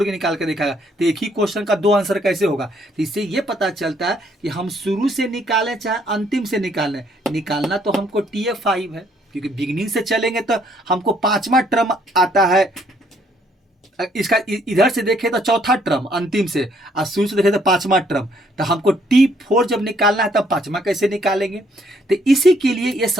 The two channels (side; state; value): both; normal; correlation 0.67